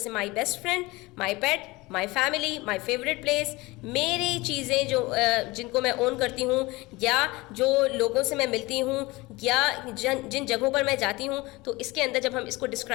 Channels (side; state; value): right; quieter; 22.1 dB